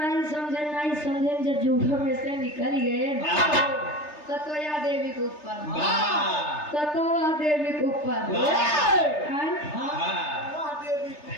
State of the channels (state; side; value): late; right; 3.3 ms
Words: नहीं समझे जब जूठों में से निकल गए ततोया देवी के ऊपर ततोया देवी के ऊपर